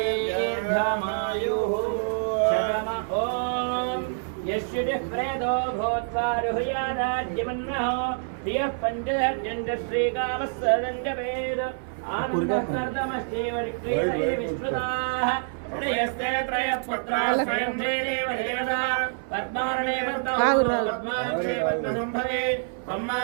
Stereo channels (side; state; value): left; silent; 58 dB below the other